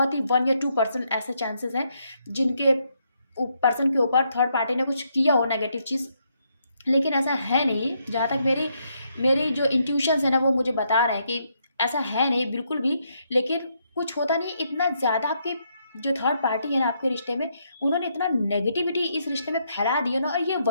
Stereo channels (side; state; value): both; inverted; correlation -0.76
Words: ही 1 या 2% ऐसे चांसेस हैं जिनके पर्सन के ऊपर थर्ड पार्टी ने कुछ किया हो नेगेटिव चीज़। लेकिन ऐसा है नहीं, जहाँ तक मेरी मेरी जो इंट्यूशंस है ना वो मुझे बता रहे हैं कि ऐसा है नहीं बिल्कुल भी। लेकिन कुछ होता नहीं, इतना ज़्यादा आपके जो थर्ड पार्टी है ना आपके रिश्ते में, उन्होंने इतना नेगेटिविटी इस रिश्ते में फैला दी है ना, और ये